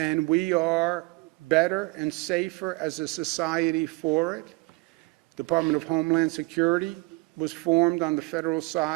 we are better and safer as a society for it. Department of Homeland Security was formed on the federal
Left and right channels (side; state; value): left; quieter; 25.0 dB